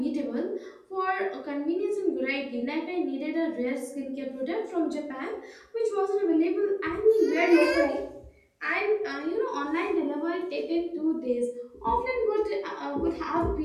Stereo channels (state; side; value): identical; both; correlation 1.00